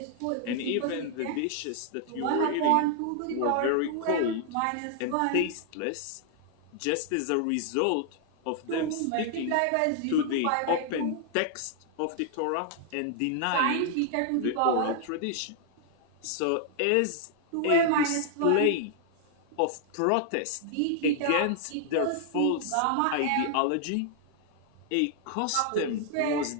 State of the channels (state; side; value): different; both; correlation 0.00